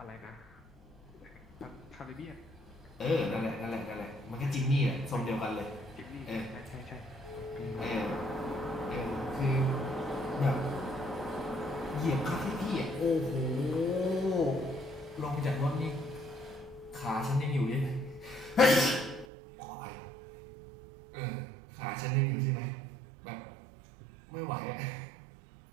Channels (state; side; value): drops out; left; at 19.2 s